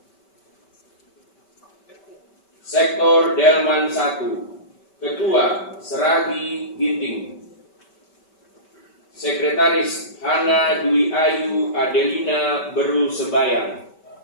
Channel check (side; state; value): right; late; 5.2 ms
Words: Sektor Delman 1. Ketua Seragi Ginting. Sekretaris Hana Dwi Ayu Adelina Beru Sebayang.